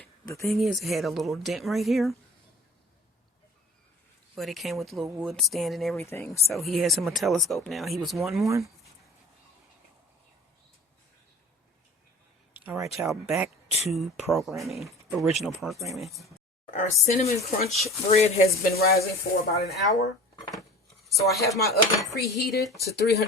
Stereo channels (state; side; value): normal; both; correlation 0.41